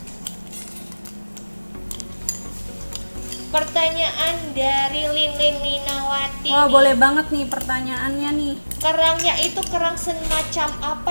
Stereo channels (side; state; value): both; inverted; correlation -1.00